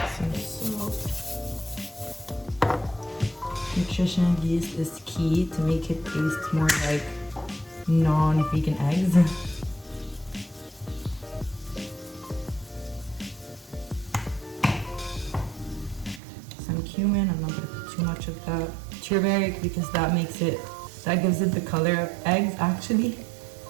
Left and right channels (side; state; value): left; drops out; at 16.2 s